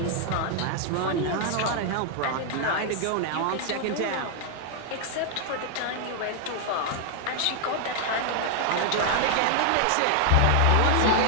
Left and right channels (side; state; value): both; different; correlation 0.00